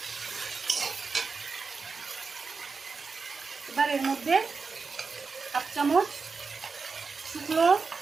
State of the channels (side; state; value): left; quieter; 4.8 dB